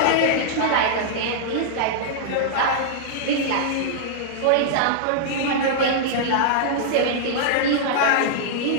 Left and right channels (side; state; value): both; different; correlation -0.02